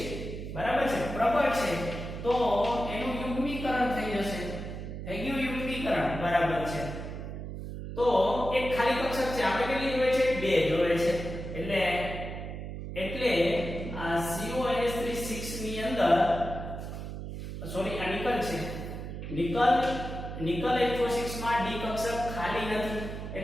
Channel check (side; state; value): right; noise; hum, 7 dB below the sound